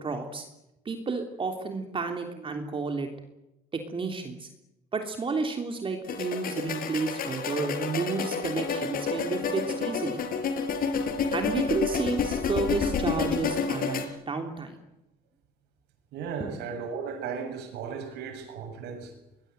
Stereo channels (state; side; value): normal; both; correlation 0.44